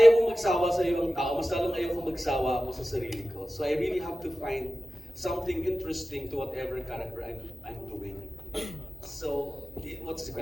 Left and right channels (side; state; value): both; normal; correlation 0.95